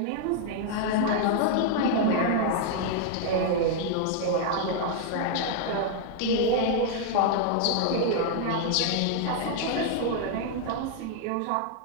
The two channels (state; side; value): different; both; correlation 0.00